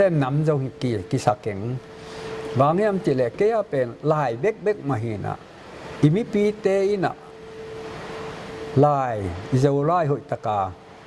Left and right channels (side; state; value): both; identical; correlation 1.00